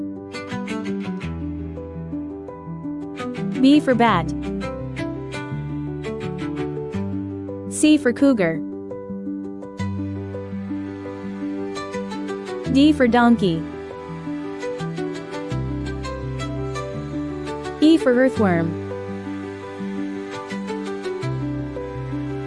B for bat. C for cougar. D for donkey. E for earthworm.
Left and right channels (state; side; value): identical; both; correlation 1.00